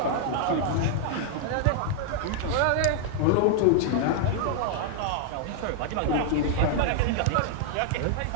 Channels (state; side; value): different; both; correlation -0.01